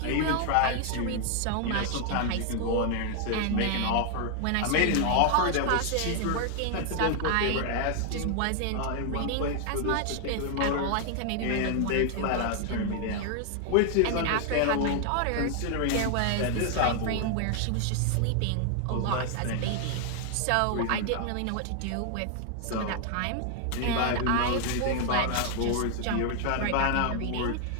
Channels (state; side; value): different; both; correlation 0.00